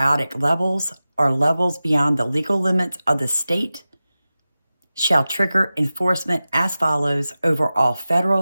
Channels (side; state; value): both; inverted; correlation -0.95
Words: levels or levels beyond the legal limits of the state, shall trigger enforcement as follows over all